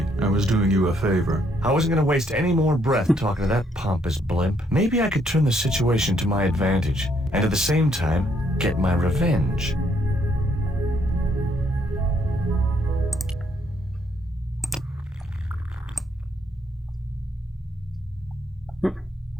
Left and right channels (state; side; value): normal; both; correlation 0.71